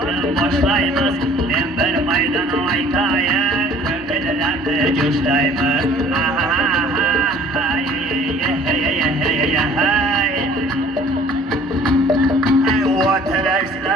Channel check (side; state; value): both; normal; correlation 0.52